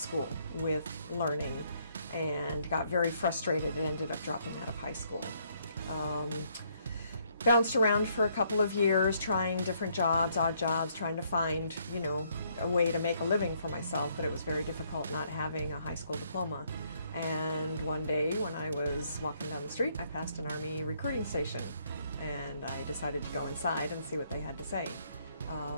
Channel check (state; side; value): inverted; both; correlation -0.69